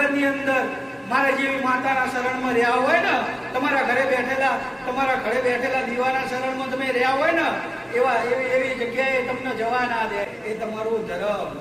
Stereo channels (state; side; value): identical; both; correlation 1.00